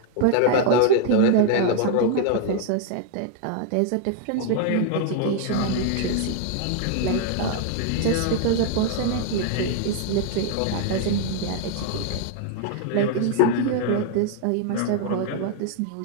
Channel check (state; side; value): different; both; correlation 0.00